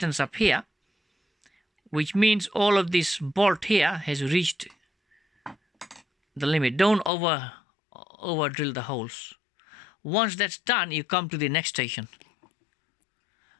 up here, which means all of this bolt here has reached the limit. Don't over drill the holes. Once that's done, you come to the next station.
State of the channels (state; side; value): drops out; right; at 7.1 s